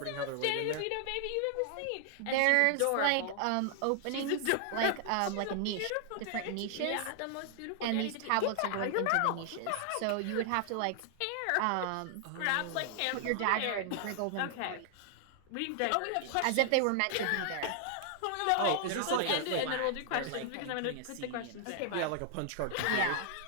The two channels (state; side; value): different; both; correlation 0.00